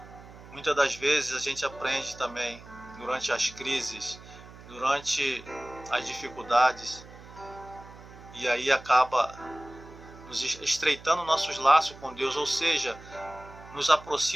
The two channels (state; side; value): noise; right; hum, 18 dB below the sound